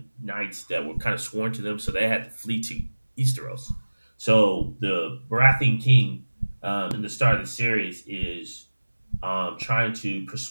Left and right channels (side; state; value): both; inverted; correlation -1.00